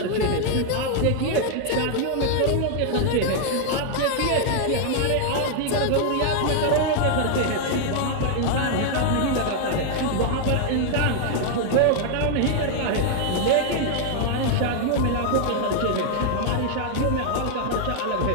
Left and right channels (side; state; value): both; different; correlation 0.00